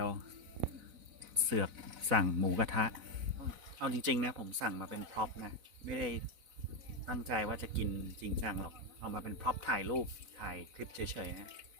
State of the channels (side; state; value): left; late; 4.0 ms